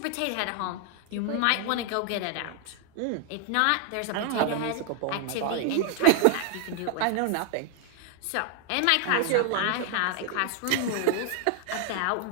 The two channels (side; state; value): both; different; correlation 0.00